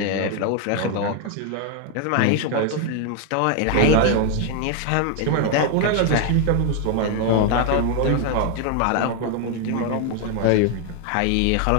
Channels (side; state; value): both; different; correlation 0.01